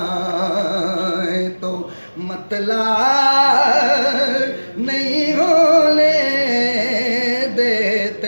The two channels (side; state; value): both; inverted; correlation -1.00